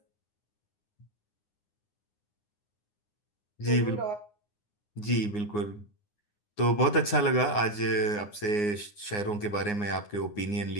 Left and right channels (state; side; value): late; right; 9.7 ms